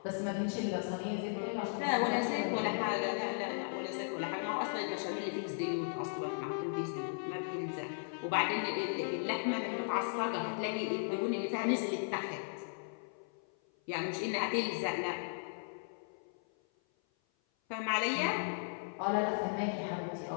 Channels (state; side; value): silent; right; 53 dB below the other